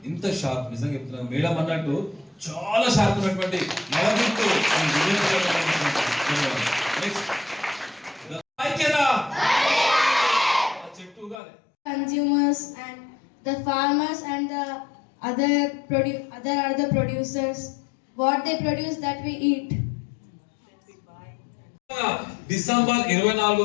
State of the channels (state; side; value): drops out; right; at 11.4 s